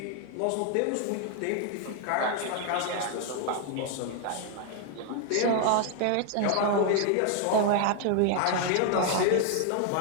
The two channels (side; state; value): both; different; correlation 0.00